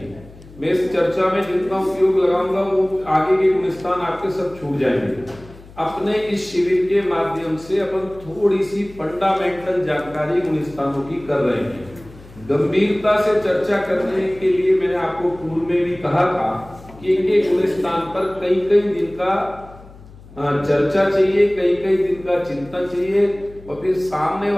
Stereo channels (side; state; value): left; noise; hum, 21 dB below the sound